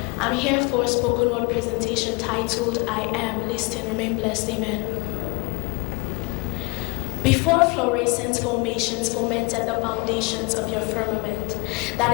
I'm here for a spoken word presentation titled I Am. Listen, remain blessed. Amen. Before fluorescent formations fomented the foundations of your firmament, that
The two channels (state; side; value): quieter; right; 28.7 dB